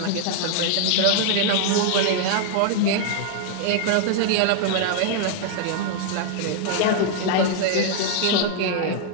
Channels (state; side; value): different; both; correlation 0.00